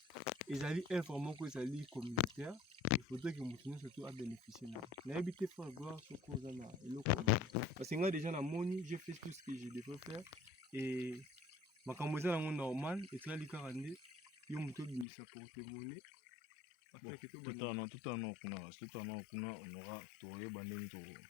ils allaient informer que ça lit communautaire. Il faudrait que nous surtout à bénéficier na habité fort gloire sur cause na parce que moi déjà na moni j'ai fait tout ce que je devais faire et ma camoza na normal et là li 42 yo muto bimisa pour témoigner. Bon, tout en on aura trouvé bandé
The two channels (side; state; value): right; drops out; at 15.1 s